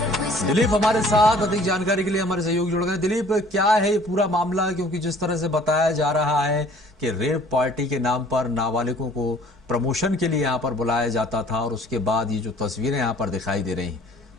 दिलीप हमारे साथ अधिक जानकारी के लिए हमारे सहयोगी जुड़ गए। दिलीप, क्या है ये पूरा मामला? क्योंकि जिस तरह से बताया जा रहा है कि रेप पार्टी के नाम पर नाबालिगों को प्रमोशन के लिए यहाँ पर बुलाया जाता था और उसके बाद ये जो तस्वीरें यहाँ पर दिखाई दे रही हैं,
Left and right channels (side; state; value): both; normal; correlation 0.54